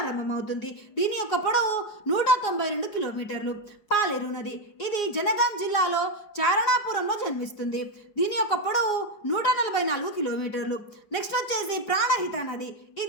దీని యొక్క పొడవు 192 కిలోమీటర్లు. పాలేరు నది ఇది జనగాం జిల్లాలో చారణాపురంలో జన్మిస్తుంది. దీని యొక్క పొడవు 144 కిలోమీటర్లు. నెక్స్ట్ వచ్చేసి ప్రాణహిత నది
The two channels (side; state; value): right; late; 5.0 ms